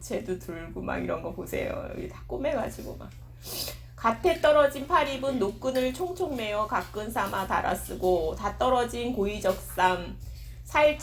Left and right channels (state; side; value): identical; both; correlation 1.00